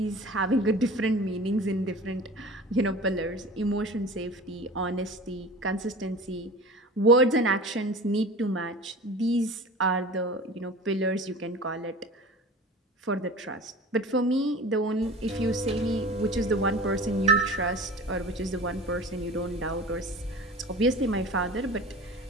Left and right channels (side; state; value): both; normal; correlation 0.37